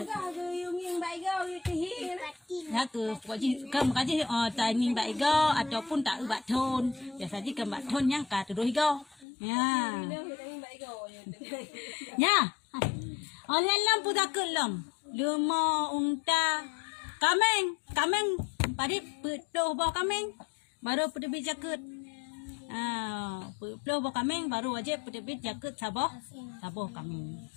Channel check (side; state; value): right; drops out; at 9.2 s